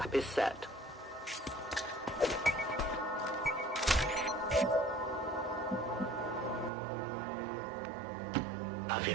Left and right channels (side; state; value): left; drops out; at 6.7 s